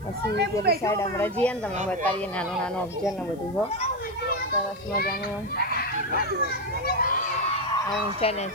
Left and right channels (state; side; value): noise; left; hiss, 28 dB below the sound